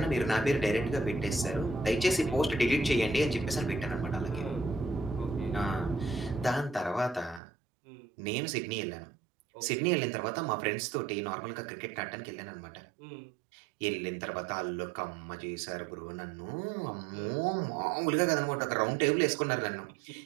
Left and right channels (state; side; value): drops out; left; at 7.4 s